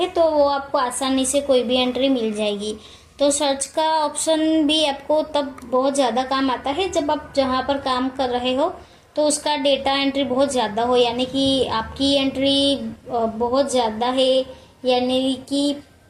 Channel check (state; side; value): identical; both; correlation 1.00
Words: तो वो आपको आसानी से कोई भी एंट्री मिल जाएगी। तो सर्च का ऑप्शन भी आपको तब बहुत ज़्यादा काम आता है जब आप जहाँ पर काम कर रहे हो तो उसका डेटा एंट्री बहुत ज़्यादा हो, यानी कि आपकी एंट्री बहुत ज़्यादा है, यानी कि